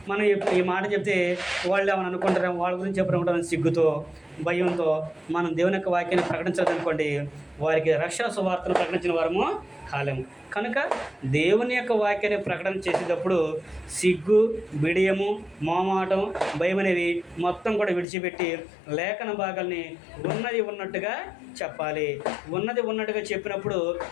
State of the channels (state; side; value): drops out; right; at 18.1 s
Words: మనం ఈ మాట చెప్తే వాళ్ళు ఏమైనా అనుకుంటారేమో, వాళ్ళ గురించి చెప్పడం సిగ్గుతో, భయంతో మనం దేవుని యొక్క వాక్యాన్ని ప్రకటించదనుకోండి, వారికి రక్షణ సువార్తను ప్రకటించిన వారము కాలేము. కనుక దేవుని యొక్క వాక్యాన్ని ప్రకటన చేసేటప్పుడు సిగ్గు, బిడియము, మోమాటం, భయం అనేవి మొత్తం కూడా విడిచిపెట్టి లేఖన భాగాల్ని ఉన్నది ఉన్నట్టుగా చెప్పాలి. ఉన్నది ఉన్నట్టుగా చెప్పినప్పుడు